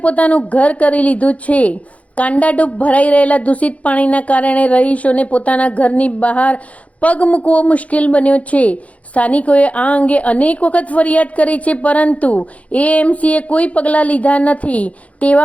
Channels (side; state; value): right; late; 0.066 ms